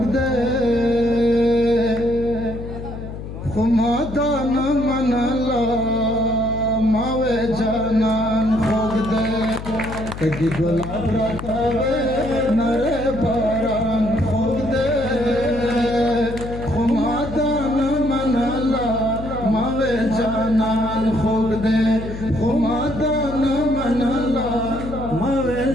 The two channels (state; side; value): noise; left; hum, 9 dB below the sound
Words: ده خمادان منلا ماوے جانان خوگ ده تگی گلاب را توه نر باران خوگ ده خمادان منلا ماوے جانان خوگ ده خمادان منلا ماوے